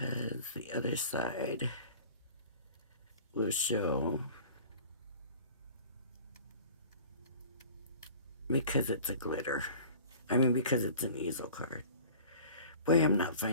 the other side will show because it's a glitter. I mean, because it's an easel card. Boy, I'm not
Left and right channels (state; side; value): inverted; both; correlation -0.44